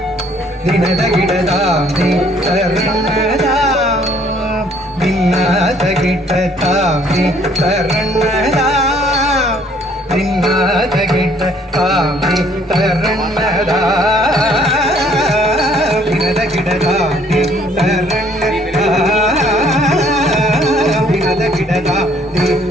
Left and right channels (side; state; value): both; normal; correlation 0.61